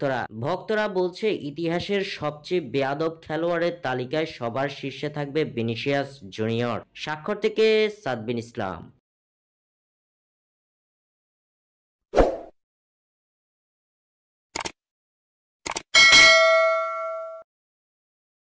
ভক্তরা বলছে ইতিহাসের সবচেয়ে বেয়াদব খেলোয়াড়ের তালিকায় সবার শীর্ষে থাকবে ভিনিসিয়াস জুনিয়র। স্বাক্ষর থেকে সাদবিন ইসলাম।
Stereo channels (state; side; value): identical; both; correlation 1.00